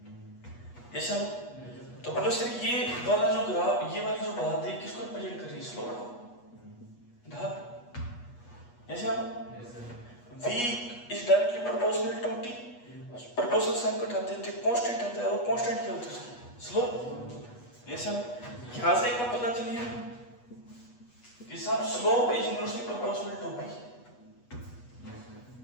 ये सर। तो बोले सर ये वाला जो ग्राफ, ये वाली जो बात है किसको रिप्रेजेंट कर रही है? स्लोप को, ढाल। ये sir V is directly proportional to T। Proportional sign को उठाते हैं तो कांस्टेंट आता है, और कांस्टेंट क्या होता है? स्लोप। ये सर यहाँ से एक बात पता चली है कि साहब slope is inversely proportional to V।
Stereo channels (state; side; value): late; right; 8.3 ms